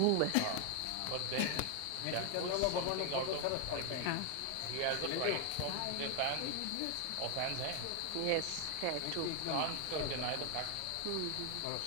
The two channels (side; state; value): both; different; correlation 0.00